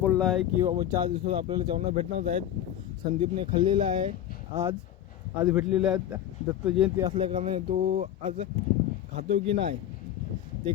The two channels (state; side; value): quieter; right; 11.1 dB